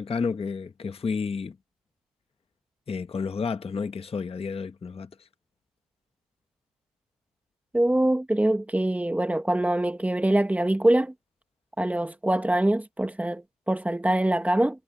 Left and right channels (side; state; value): both; normal; correlation 0.95